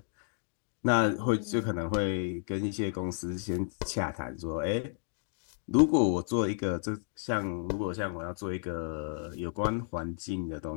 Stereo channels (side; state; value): right; silent; 56 dB below the other